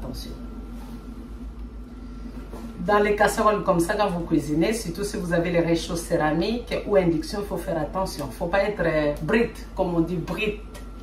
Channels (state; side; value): identical; both; correlation 1.00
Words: Dans les casseroles comme ça, quand vous cuisinez, surtout si vous avez les réchauds céramiques ou induction, il faut faire attention. Il ne faut pas être brite, comme on dit brite.